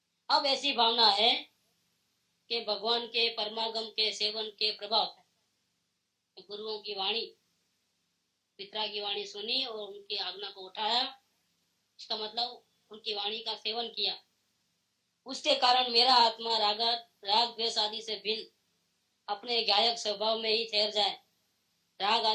अब ऐसी भावना है कि भगवान के परमागम के सेवन के प्रभाव से गुरुओं की वाणी, पिता की वाणी सुनी और उनकी आज्ञा को उठाया, इसका मतलब उनकी वाणी का सेवन किया, उसके कारण मेरा आत्मा राग द्वेष आदि से भिन्न अपने गायक स्वभाव में ही ठहर जाए, राग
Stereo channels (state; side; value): identical; both; correlation 1.00